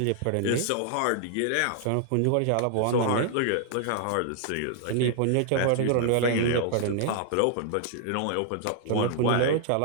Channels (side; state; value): both; different; correlation 0.00